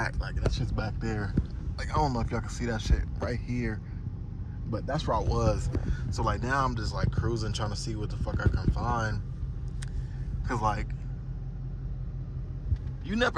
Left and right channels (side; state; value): both; identical; correlation 1.00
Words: Like, that shit's back there. Like, I don't know if y'all can see that shit right here, but that's where I was. So like now I'm just like cruising, trying to see what the fuck I can find. Cause like, you